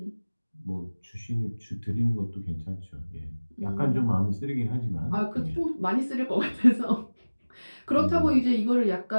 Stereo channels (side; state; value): both; inverted; correlation -1.00